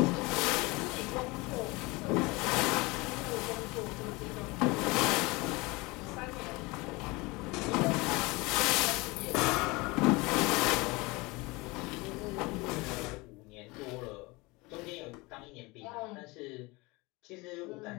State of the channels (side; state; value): right; quieter; 24.2 dB